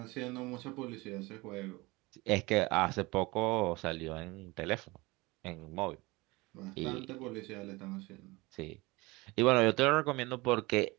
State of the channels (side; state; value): left; quieter; 23.1 dB